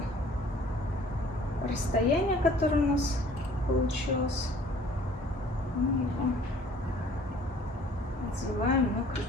расстояние, которое у нас получилось, мы его надеваем на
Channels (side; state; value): both; normal; correlation 0.53